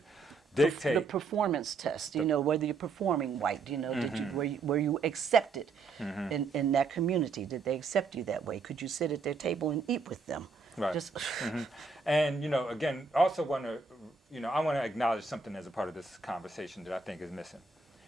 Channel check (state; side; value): quieter; left; 4.3 dB